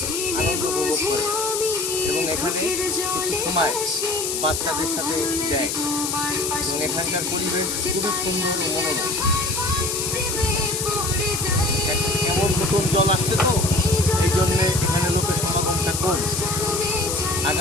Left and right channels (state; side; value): noise; left; hiss, 2 dB below the sound